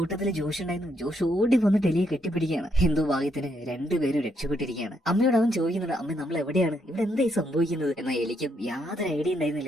ജോഷ് ഉണ്ടായിരുന്നു. ജോഷ് ഓടി വന്നിട്ട് എലിയെ കെട്ടിപ്പിടിക്കുകയാണ്. എന്തോ ഭാഗ്യത്തിന് രണ്ടുപേരും രക്ഷപ്പെട്ടിരിക്കുകയാണ്. അമ്മയോട് അവൻ ചോദിക്കുന്നുണ്ട്, അമ്മ നമ്മൾ എവിടെയാണ്, ഇവിടെ എന്തായി സംഭവിക്കുന്നത്? എന്നാൽ എലിക്കും യാതൊരു ഐഡിയ ഉണ്ടായിരുന്നില്ല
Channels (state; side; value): normal; both; correlation 0.76